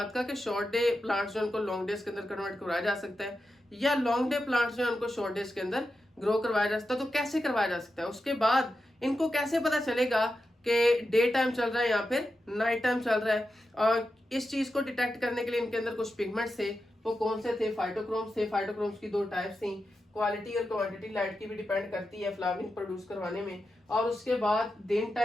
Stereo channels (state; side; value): normal; both; correlation 0.89